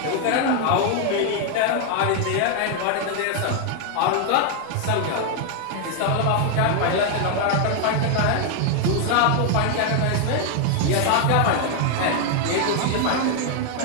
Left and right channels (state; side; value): different; both; correlation 0.00